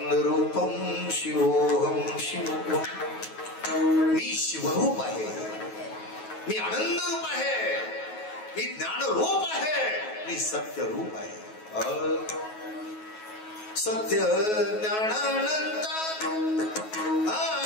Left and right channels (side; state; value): right; late; 9.3 ms